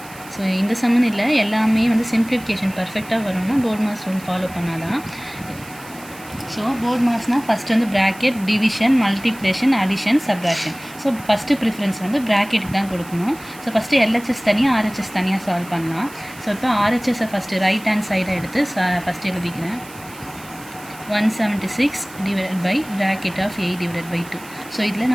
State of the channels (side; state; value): right; noise; hiss, 19 dB below the sound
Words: ஸோ இந்த சம்மன் இல்லை, எல்லாமே வந்து சிம்பிளிஃபிகேஷன் பர்ஃபெக்டாக வரணும்னா போர்ட் மாஸ் ரூல் ஃபாலோ பண்ணால் தான். ஸோ போர்ட் மாஸ்னால் ஃபஸ்ட்டு வந்து bracket, division, multiplication, addition, subtraction. So first preference வந்து ப்ராக்கெட்டுக்கு தான் கொடுக்கணும். ஸோ ஃபஸ்ட்டு எல்ஹெச்எஸ் தனியாக, ஆர்ஹெச்எஸ் தனியாக சால்வ் பண்ணலாம். ஸோ இப்போ ஆர்ஹெச்எஸை ஃபஸ்ட்டு ரைட் ஹேண்ட் சைடை எடுத்து ஃபஸ்ட்டு எழுதிக்கிறேன். 176 divided by bracket of 8 divided by 2. So இதில்